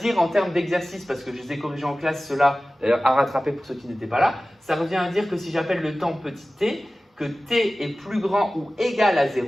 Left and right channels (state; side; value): normal; both; correlation 0.96